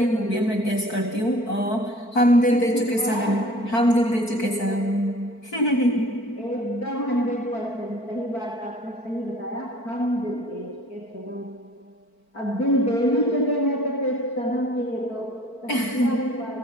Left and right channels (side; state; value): right; late; 4.5 ms